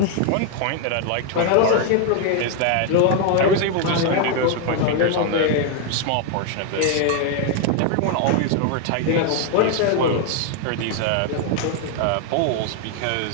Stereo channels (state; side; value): different; both; correlation 0.00